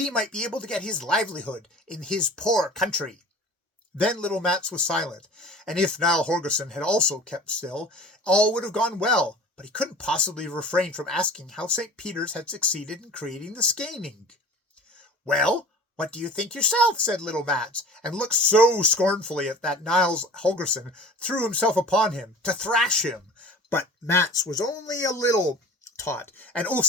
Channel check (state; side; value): normal; both; correlation 0.41